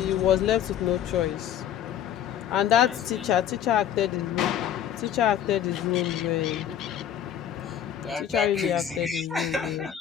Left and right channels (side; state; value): right; quieter; 9.9 dB